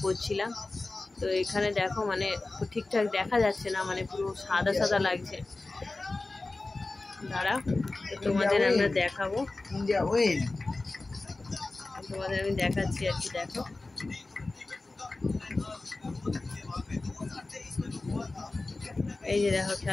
করছিলাম। তো এখানে দেখো, মানে ঠিকঠাক দেখা যাচ্ছে না, মানে পুরো সাদা সাদা লাগছে। দাঁড়া, তোমাদের আমরা দেখাবো, তোমাদের আমি দেখাচ্ছি আর কি। দেখো, এই যে দেখো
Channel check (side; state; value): right; quieter; 3.2 dB